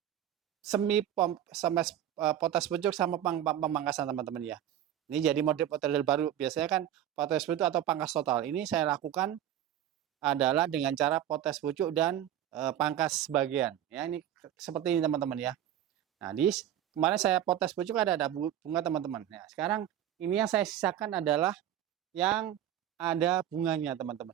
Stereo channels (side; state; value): left; quieter; 11.3 dB